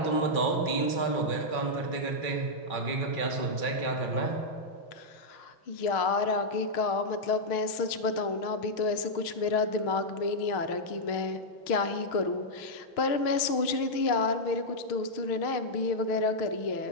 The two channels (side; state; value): right; late; 6.5 ms